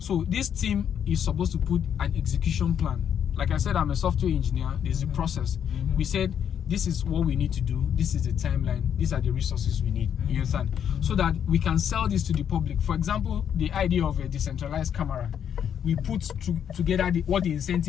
this team is supposed to put an execution plan. Like I said, I'm a software engineer. There's a process. We said, this is what we need to do. This is the timeline. These are the resources we need. You understand? So that we can sell this to the public. For example, the idea of a decentralized camera. We put together what the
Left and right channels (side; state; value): right; quieter; 8.7 dB